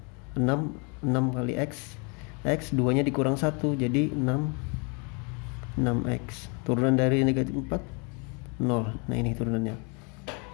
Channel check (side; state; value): right; quieter; 34.2 dB